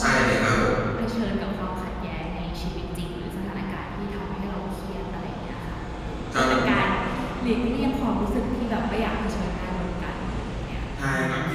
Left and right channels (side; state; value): both; identical; correlation 1.00